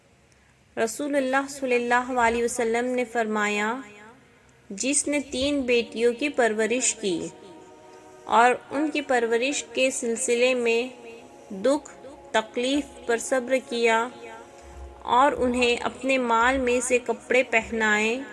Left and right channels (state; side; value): identical; both; correlation 1.00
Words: رسول اللہ صلی اللہ علیہ وسلم نے فرمایا، جس نے 3 بیٹیوں کی پرورش کی اور ان کی پرورش کے سلسلے میں دکھ تکلیف پر صبر کیا اور انہیں اپنے مال میں سے کپڑے پہنائے،